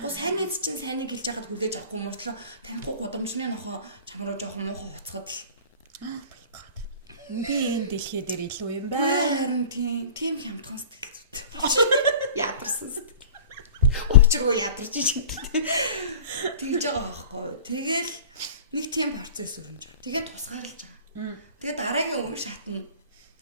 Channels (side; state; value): both; inverted; correlation -0.41